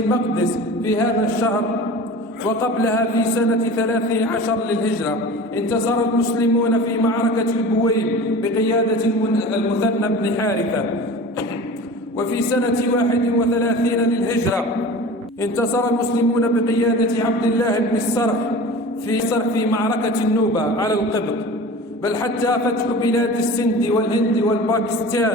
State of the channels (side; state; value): both; normal; correlation 0.36